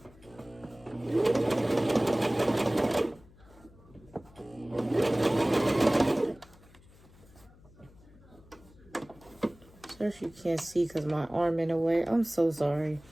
Sorry if you can't see because my arm in the way. I'm so sorry.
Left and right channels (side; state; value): left; noise; hum, 25 dB below the sound